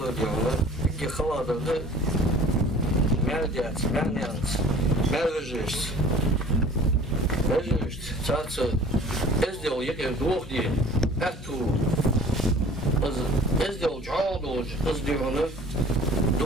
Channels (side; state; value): both; normal; correlation 0.48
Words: diyorlar. İki xaladırdı. Merdiyat, merdiyat. Mervejist. Mervejist. Çatsı ezdel yeke doğ diye. Ertu. Ezdel çoğul az diyorlar.